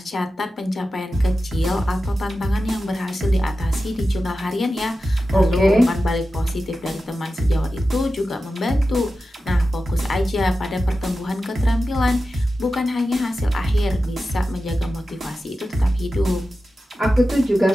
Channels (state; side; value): normal; both; correlation 0.93